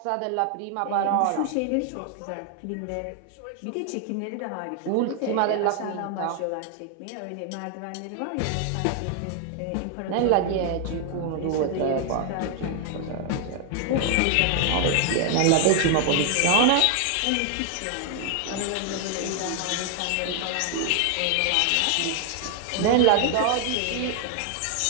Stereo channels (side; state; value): both; different; correlation 0.00